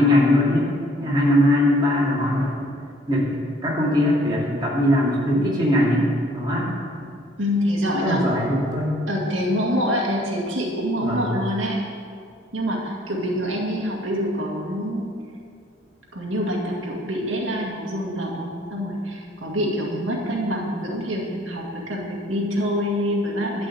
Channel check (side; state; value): both; normal; correlation 0.58